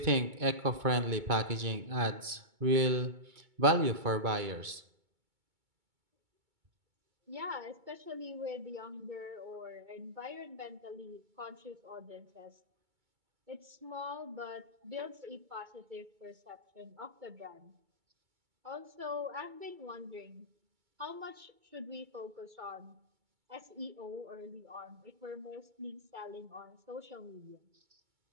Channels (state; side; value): late; left; 2.2 ms